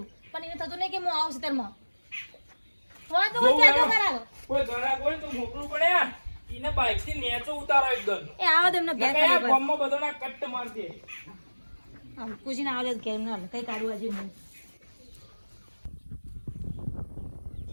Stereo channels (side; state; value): both; inverted; correlation -1.00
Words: પણ એને થતું નહીં કે હું આવું ખેતરમાં હોય તો હું કહેજો કરાવો કોઈ ઘણા કોઈ તો મોકલું પડે એને બાઈક થી નેચો ઉતારો એકદમ. એ આવો તો એમને ઘેર નકર આ કાઢી ગામમાં બધાના કટ્ટ મારતી. આમ કુજીને આવો તો ઘેર ના કઈ કાઢું આજે હું